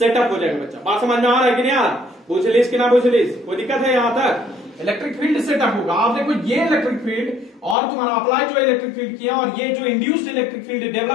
हो जाएगा बच्चा। बात समझ में आ रहा है कि नहीं आ रहा, पूछ लीजिए कि ना पूछ लीजिए, कोई दिक्कत है यहां तक। इलेक्ट्रिक फील्ड सेटअप होगा। आप देखो ये इलेक्ट्रिक फील्ड और तुम्हारा अप्लाई जो इलेक्ट्रिक फील्ड किया और ये जो इंड्यूस्ड इलेक्ट्रिक फील्ड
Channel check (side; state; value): right; drops out; at 7.8 s